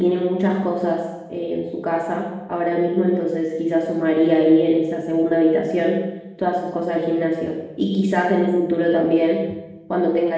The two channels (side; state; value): both; identical; correlation 1.00